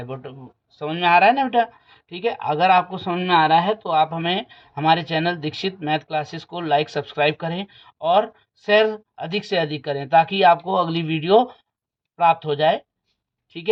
बट समझ में आ रहा है ना बेटा। ठीक है, अगर आपको समझ में आ रहा है तो आप हमें हमारे चैनल दीक्षित मैथ क्लासेस को लाइक सब्सक्राइब करें और शेयर अधिक से अधिक करें, ताकि आपको अगली वीडियो प्राप्त हो जाए। ठीक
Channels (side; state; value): both; identical; correlation 1.00